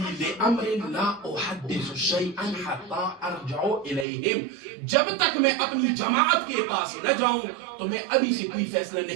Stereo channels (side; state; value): left; drops out; at 4.0 s